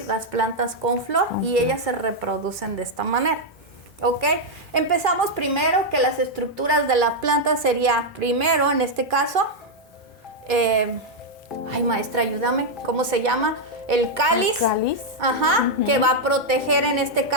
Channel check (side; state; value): both; normal; correlation -0.01